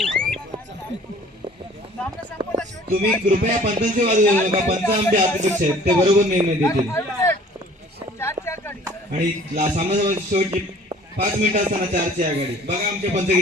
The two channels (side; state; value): both; normal; correlation 0.51